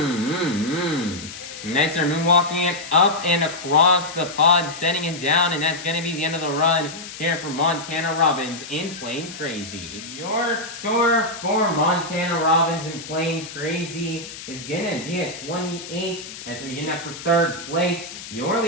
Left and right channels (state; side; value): noise; left; hiss, 12 dB below the sound